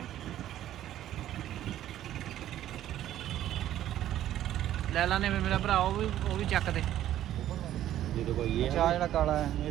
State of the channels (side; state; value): left; quieter; 12.4 dB